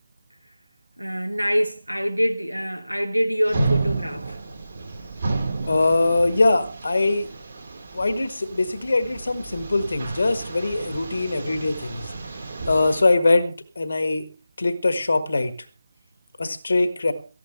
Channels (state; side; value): inverted; both; correlation -0.95